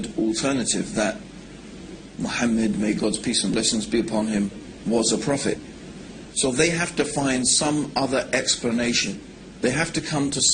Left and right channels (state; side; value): identical; both; correlation 1.00